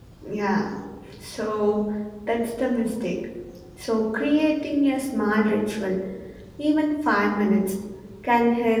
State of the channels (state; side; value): identical; both; correlation 1.00